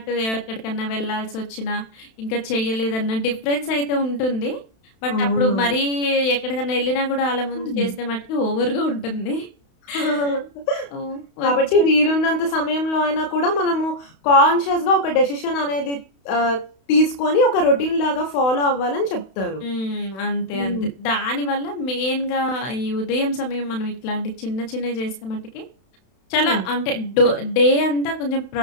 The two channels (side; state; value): right; late; 31 ms